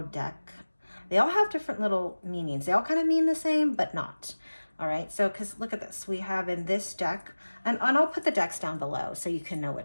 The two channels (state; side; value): inverted; both; correlation -1.00